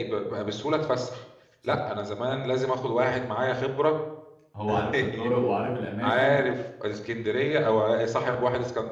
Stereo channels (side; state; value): both; identical; correlation 1.00